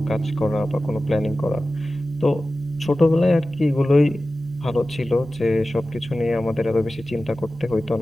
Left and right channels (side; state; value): both; normal; correlation 0.95